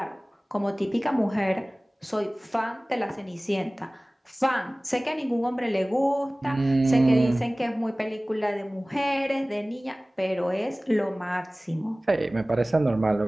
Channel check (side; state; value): both; normal; correlation 0.98